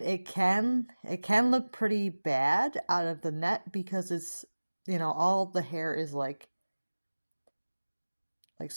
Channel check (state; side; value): inverted; both; correlation -1.00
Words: it can look pretty bad out of the net because it's, all the hair is like